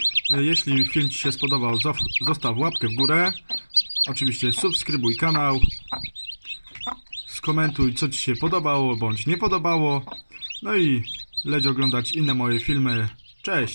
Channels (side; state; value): both; inverted; correlation -1.00